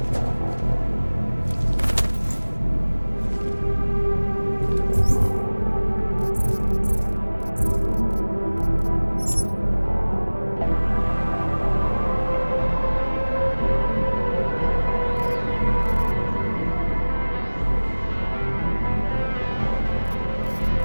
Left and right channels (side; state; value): both; inverted; correlation -1.00